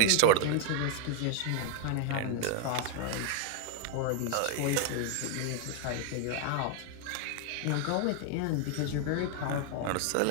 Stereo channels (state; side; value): different; both; correlation 0.01